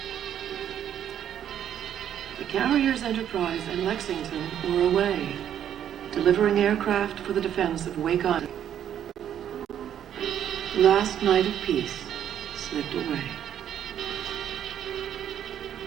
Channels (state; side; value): quieter; left; 9.9 dB